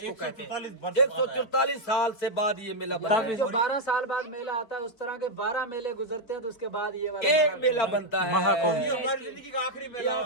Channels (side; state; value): right; late; 4.3 ms